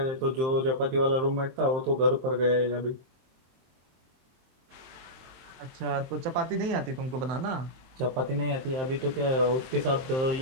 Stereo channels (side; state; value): left; late; 23 ms